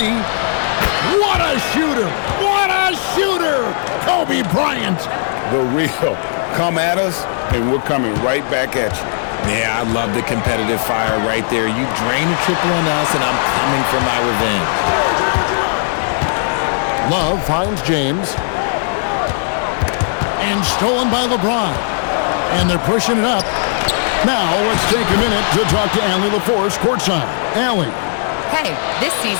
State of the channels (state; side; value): silent; right; digital silence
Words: What a shooter! What a shooter! Kobe Bryant. The real. Come at us, and we're coming right back at you. Yeah, I love the competitive fire right there. You drain a triple on us, and I'm coming for my revenge. Love finds James. And stolen by LeBron. And they're pushing it up. Now, let's take a minute to talk to Allie LaForce courtside. Allie. Hey, this